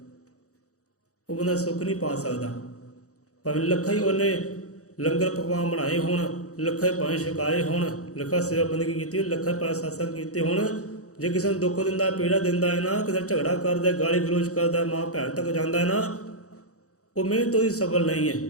ਉਹ ਬੰਦਾ ਸੁੱਖ ਨਹੀਂ ਪਾ ਸਕਦਾ। ਭਾਵੇਂ ਲੱਖਾਂ ਹੀ ਉਹਨੇ ਲੰਗਰ ਪਕਵਾਨ ਬਣਾਏ ਹੋਣ, ਲੱਖਾਂ ਹੀ ਭਾਵੇਂ ਛਕਾਏ ਹੋਣ, ਲੱਖਾਂ ਸੇਵਾ ਬੰਦਗੀ ਕੀਤੀ, ਲੱਖਾਂ ਭਾਵੇਂ ਸਤਸੰਗ ਕੀਤੇ ਹੋਣ, ਜੇ ਕਿਸੇ ਨੂੰ ਦੁੱਖ ਦਿੰਦਾ, ਪੀੜਾ ਦਿੰਦਾ ਹੈ ਨਾ, ਕਿਸੇ ਝਗੜਾ ਕਰਦਾ, ਗਾਲੀ ਗਲੋਚ ਕਰਦਾ, ਮਾਂ ਭੈਣ ਤੱਕ ਜਾਂਦਾ ਹੈ ਨਾ, ਉਹ ਮਿਹਨਤ ਉਹਦੀ ਸਫਲ ਨਹੀਂ ਹੈ।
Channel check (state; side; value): late; right; 0.65 ms